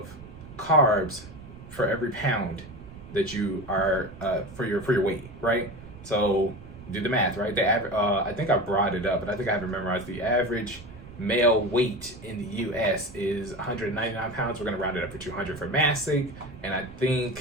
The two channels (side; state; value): right; noise; rumble, 17 dB below the sound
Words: carbs for every pound that you are for your weight, right? So do the math, right? The average, I think I brought it up, but I think I haven't memorized. The average male weight in the U.S. is 199 pounds. We're gonna round it up to 200 for mass sake, and I